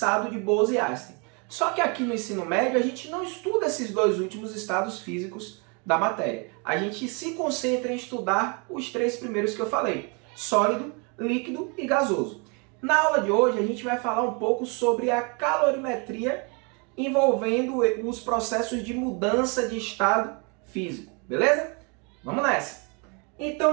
de Bose-Einstein. Só que aqui no ensino médio a gente não estuda esses dois últimos estados físicos da matéria. A gente se concentra em estudar os três primeiros que eu falei: sólido, líquido e gasoso. Na aula de hoje a gente vai falar um pouco sobre a calorimetria envolvendo os processos de mudança de estado físico, beleza? Vamos nessa!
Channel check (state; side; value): quieter; left; 33.3 dB